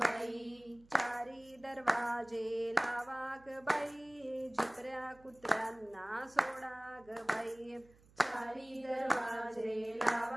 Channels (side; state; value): right; noise; hum, 27 dB below the sound